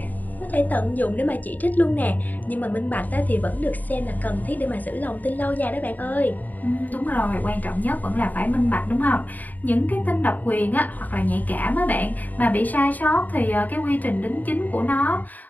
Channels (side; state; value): right; late; 0.082 ms